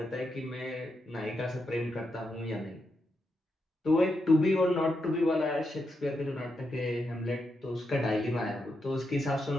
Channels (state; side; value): normal; both; correlation 0.84